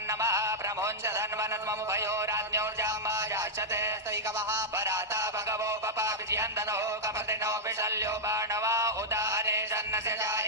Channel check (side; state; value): both; normal; correlation -0.07